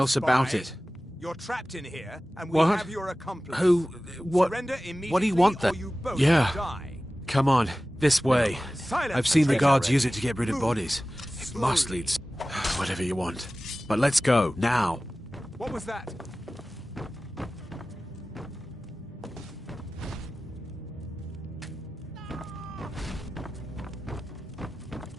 else about spy. it. You're trapped in here, and we What? have your accomplice. Who? What? Surrender What do immediately, you want or then? you both Yeah. die. Come on, this way. Silence, I've seen the traitor. guards use it to get rid of bodies. It must lead. Whatever you want. But let's go, now. What was that?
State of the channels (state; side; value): normal; both; correlation 0.96